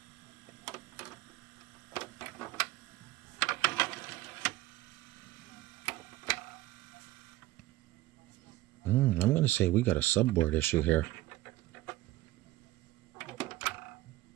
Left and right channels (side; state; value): left; quieter; 16.9 dB